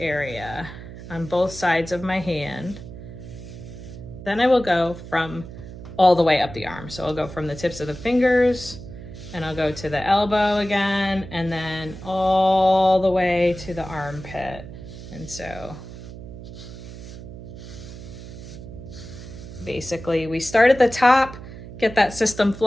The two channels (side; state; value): right; noise; hum, 13 dB below the sound